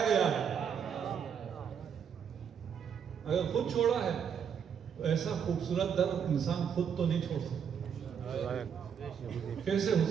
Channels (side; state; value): left; quieter; 7.6 dB